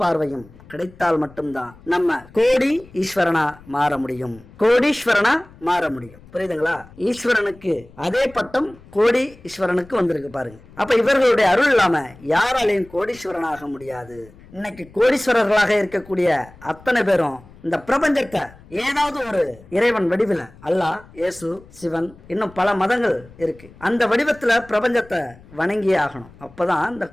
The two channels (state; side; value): noise; left; rumble, 23 dB below the sound